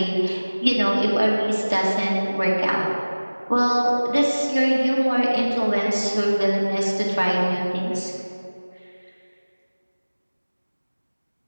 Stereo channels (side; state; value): both; inverted; correlation -1.00